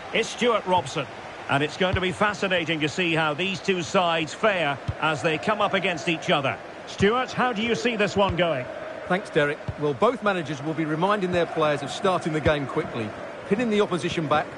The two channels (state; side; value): identical; both; correlation 1.00